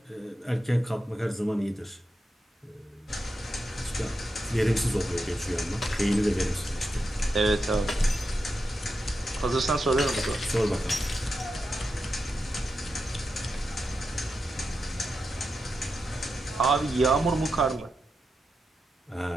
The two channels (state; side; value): normal; both; correlation 0.88